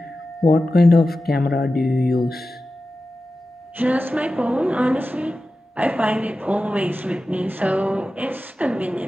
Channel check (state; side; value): normal; both; correlation 0.93